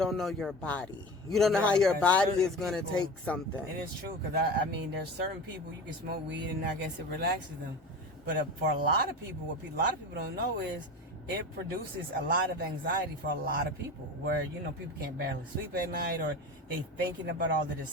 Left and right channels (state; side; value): normal; both; correlation 0.30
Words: know your body. You don't know how your body is going to take something. It is true, because I mean, there's certain people you can smoke weed and I guess it relaxes them. But for a lot of people, what a lot of people don't know is it produces a lot of anxiety for a lot of people, where, people can't barely sleep at night, or they thinking about all of this